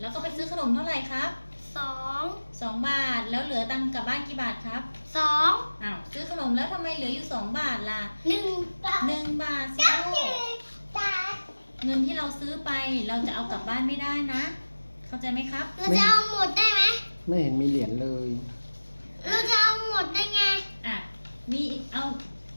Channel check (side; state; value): both; inverted; correlation -1.00